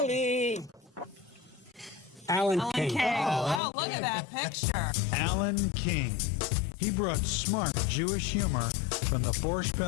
Alan King. Oh, look at that picture. Alan King. He brought smart Jewish humor from the Borscht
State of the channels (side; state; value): right; drops out; at 3.6 s